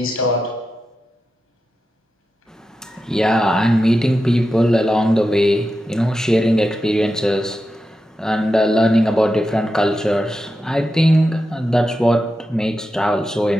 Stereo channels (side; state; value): both; normal; correlation 0.90